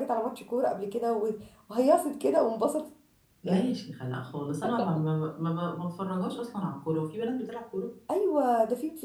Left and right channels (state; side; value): identical; both; correlation 1.00